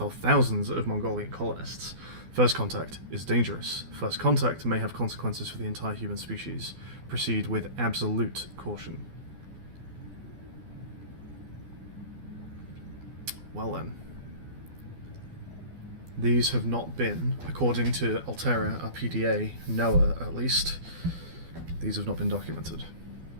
of thousands of Mongolian colonists. First contact is dangerous. First contact may have consequences for the entire human species. Proceed with absolute caution. Well then. These have not been, according to Altera, our PDA, NOAA at least, these have not been documented.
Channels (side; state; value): left; late; 12 ms